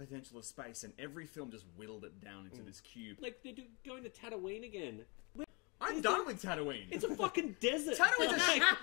of space, and every film just whittled it down into this cube. Like they're going to Tatooine again. I'm done with Tatooine. It's a fucking desert. Tatooine's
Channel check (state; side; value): quieter; right; 30.3 dB